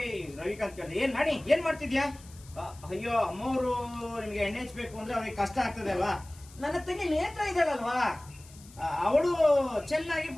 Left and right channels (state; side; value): noise; left; hiss, 22 dB below the sound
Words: ರವಿಕಾಂತ್ ಕೇಳಿದೆ, ಏನ್ ನಾಣಿ ಏನ್ ಮಾಡ್ತಿದ್ಯಾ? ಅಯ್ಯೋ ಅಮ್ಮವರು ನಿಮ್ಗೆ ಎಣ್ಣೆ ಹಚ್ಬೇಕು ಅಂದ್ರೆ ಅವ್ರಿಗೆ ಕಷ್ಟ ಆಗ್ತದೆ ಅಲ್ವಾ? ನನ್ನ ತಂಗಿ ನೇತ್ರ ಇದ್ದಾಳಲ್ವಾ, ಅವಳು ಚೆನ್ನಾಗಿ